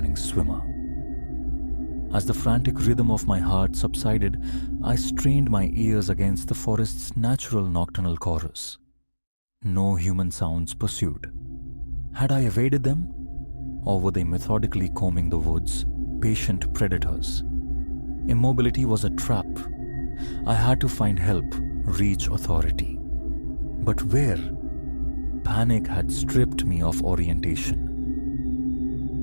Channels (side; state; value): both; inverted; correlation -1.00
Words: swimmer. As the frantic rhythm of my heart subsided, I strained my ears against the forest's natural nocturnal chorus. No human sounds pursued. Had I evaded them? Or were they methodically combing the woods, patient predators? Immobility was a trap. I had to find help, reach authority. But where? Panic had stripped me of orientation.